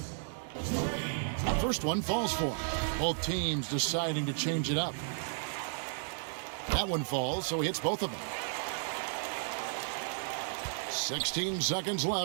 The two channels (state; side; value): silent; left; digital silence